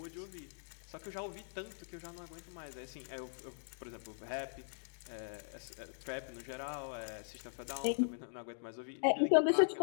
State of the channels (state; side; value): silent; right; digital silence